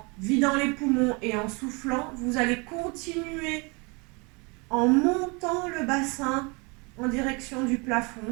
vidant les poumons et en soufflant, vous allez continuer en montant le bassin en direction du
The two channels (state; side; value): quieter; left; 29.6 dB